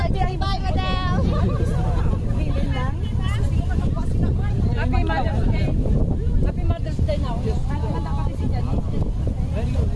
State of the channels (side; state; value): both; identical; correlation 1.00